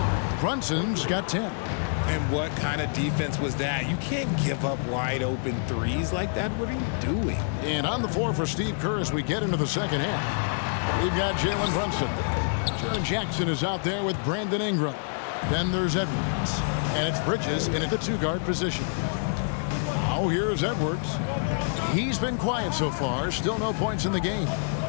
Brunson's got 10. And what kind of defense was that? You can't give up wide open threes like that. What are you doing? And on the floor for Steve Kerr as we get into the second half. We've got Jalen Brunson. Jaren Jackson is out there with Brandon Ingram. Then there's Edwards. And it's Bridges in at the 2-guard position. Now here's Edwards. He's been quiet so far. Still no points in the game.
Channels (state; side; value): silent; right; digital silence